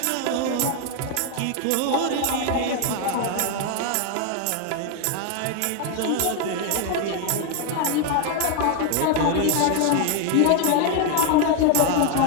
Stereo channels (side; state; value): both; different; correlation 0.01